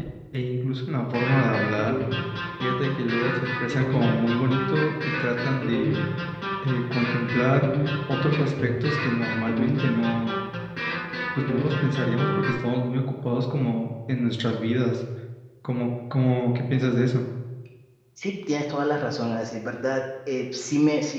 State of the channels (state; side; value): identical; both; correlation 1.00